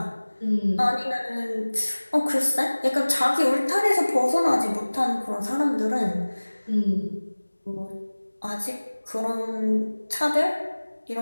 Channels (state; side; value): inverted; both; correlation -1.00